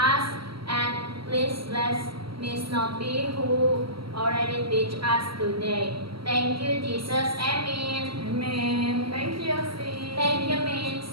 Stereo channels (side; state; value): left; late; 0.74 ms